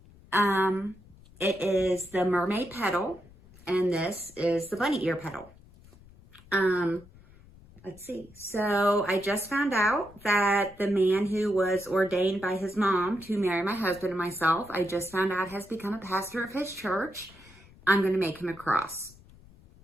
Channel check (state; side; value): noise; left; rumble, 24 dB below the sound